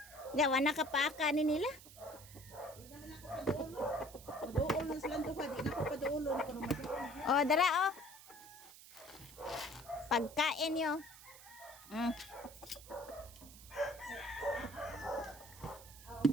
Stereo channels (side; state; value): right; noise; hiss, 18 dB below the sound